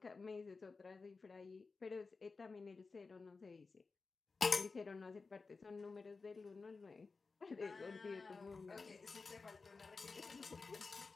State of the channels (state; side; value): quieter; right; 4.3 dB